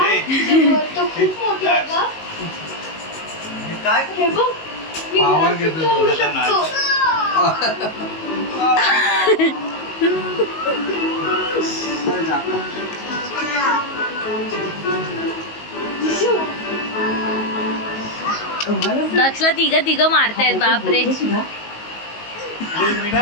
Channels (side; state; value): right; late; 19 ms